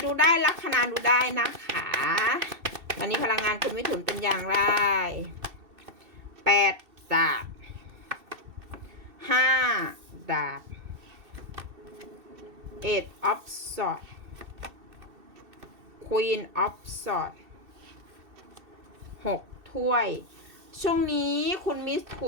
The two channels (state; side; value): late; left; 2.7 ms